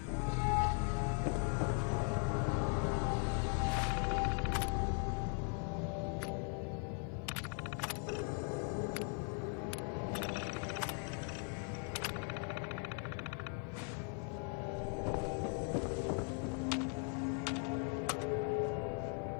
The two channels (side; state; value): right; quieter; 38.4 dB